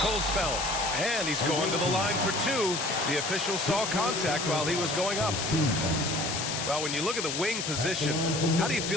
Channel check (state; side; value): noise; left; hiss, 3 dB below the sound